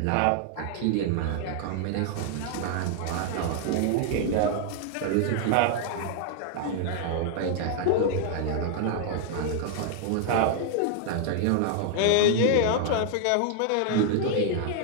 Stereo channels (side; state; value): both; different; correlation 0.00